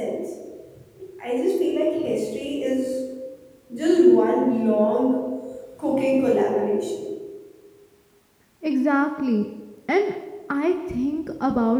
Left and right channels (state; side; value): identical; both; correlation 1.00